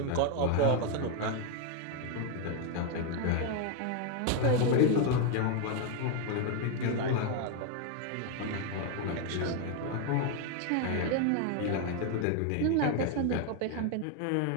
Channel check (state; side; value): different; both; correlation 0.01